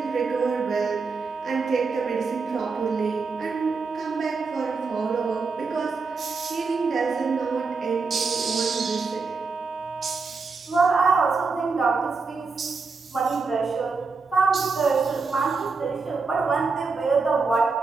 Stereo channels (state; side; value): quieter; left; 4.5 dB